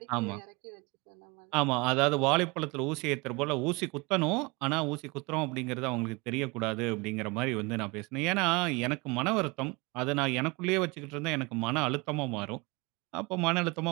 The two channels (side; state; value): left; quieter; 26.4 dB